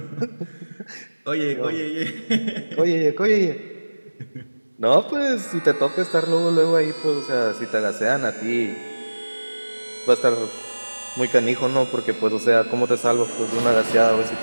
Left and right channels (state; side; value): inverted; both; correlation -1.00